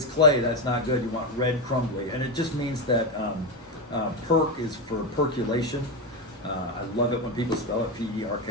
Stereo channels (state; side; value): normal; both; correlation 0.12